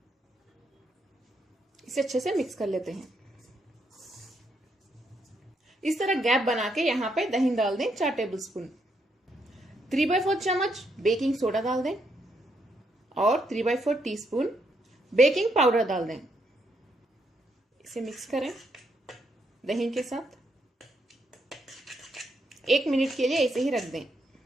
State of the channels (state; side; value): normal; both; correlation 0.77